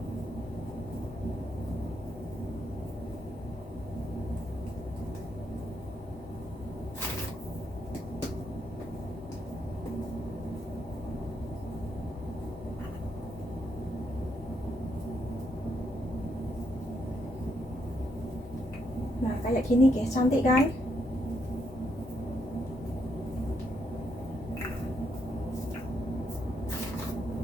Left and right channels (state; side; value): normal; both; correlation 0.77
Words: Nah, kayak gini guys, cantik kan?